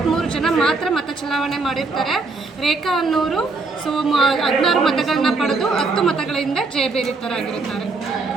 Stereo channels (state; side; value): quieter; left; 3.8 dB